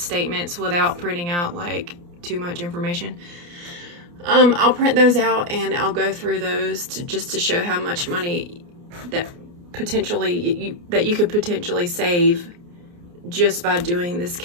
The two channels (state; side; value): late; left; 29 ms